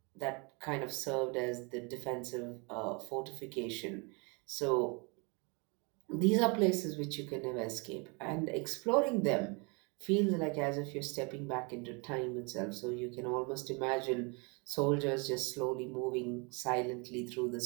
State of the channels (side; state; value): left; quieter; 31.5 dB